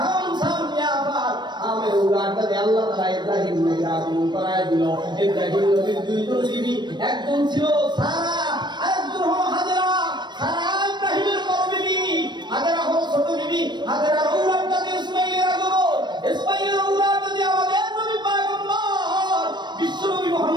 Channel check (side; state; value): left; late; 0.22 ms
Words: শাম, ইয়াফাত। আমের উলাটাতে আল্লাহ তাআলা ইব্রাহিম নবীর আগমন করায় দিল। ইব্রাহিম নবীর দুইজন বিবি, একজন ছিল সারা, আরেকজন হলো হাজেরা। সারা ইব্রাহিমের বড় বিবি, হাজেরা হলো ছোট বিবি। হাজেরার উলাটাতে ইসমাঈলের আগমন, ইসমাঈলের উলাটাতে আমাদের নবী পয়গম্বর বিশ্বনবী